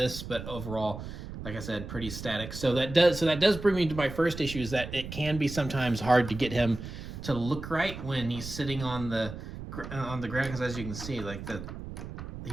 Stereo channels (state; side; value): noise; right; rumble, 10 dB below the sound